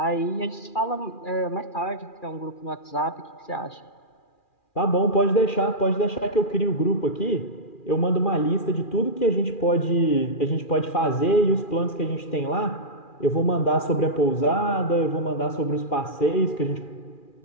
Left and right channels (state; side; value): late; right; 2.4 ms